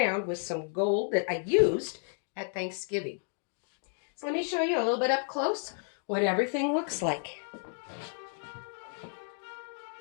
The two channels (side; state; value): right; silent; 57 dB below the other